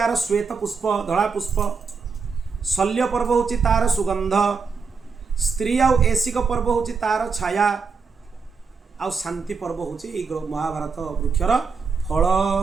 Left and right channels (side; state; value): left; quieter; 5.2 dB